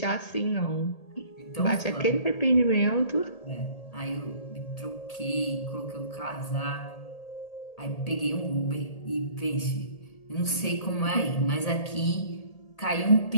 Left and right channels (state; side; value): late; right; 1.8 ms